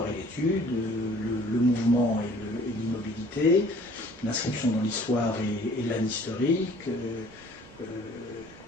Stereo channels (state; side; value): normal; both; correlation 0.53